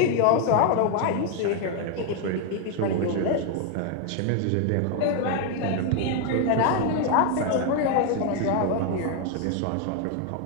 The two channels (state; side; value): different; both; correlation 0.00